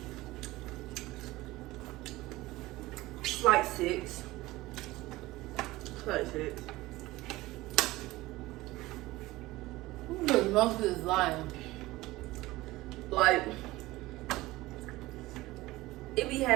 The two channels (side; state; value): left; quieter; 18.8 dB